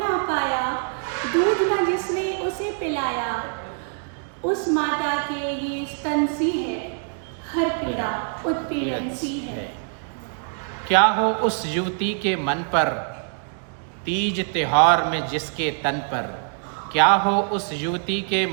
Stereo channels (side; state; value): left; silent; 63 dB below the other